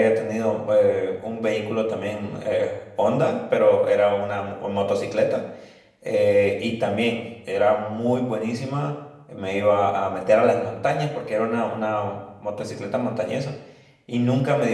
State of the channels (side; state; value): both; identical; correlation 1.00